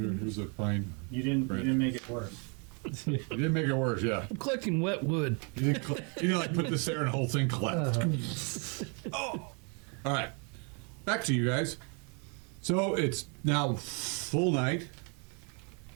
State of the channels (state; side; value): quieter; left; 36.0 dB